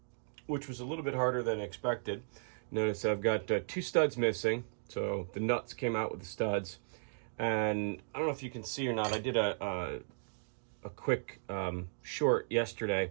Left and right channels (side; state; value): left; silent; digital silence